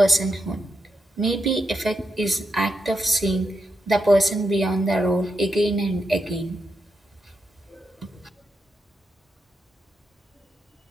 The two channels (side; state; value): both; normal; correlation 0.84